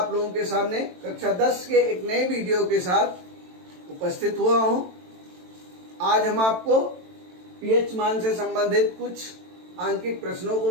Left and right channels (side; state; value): left; late; 22 ms